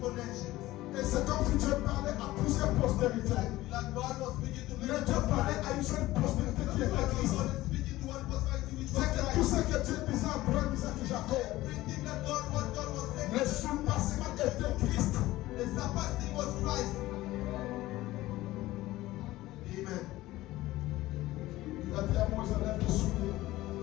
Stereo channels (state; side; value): quieter; right; 17.1 dB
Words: for nations. Et c'est comme si Dieu parlait à plusieurs postérités. Like God was speaking to Mais Dieu parlait à une seule postérité qui était Christ. God is speaking to one prosperity which was C'est que tout Christ. ce que Dieu disait à Abraham, Isaac et Jacob, Everything that God was saying, le surpassement était Christ. the surpassing was Christ. Amen. Il a dit à Moïse, enlève tes souliers.